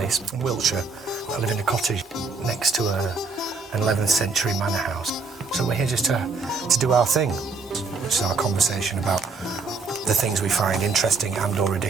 in Wiltshire. I live in a cottage next to an 11th century manor house. So we're here just to do our thing, which is our conversation about the things we find interesting and or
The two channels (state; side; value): quieter; left; 4.3 dB